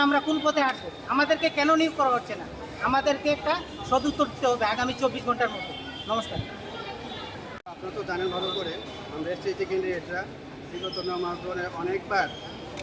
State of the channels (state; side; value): identical; both; correlation 1.00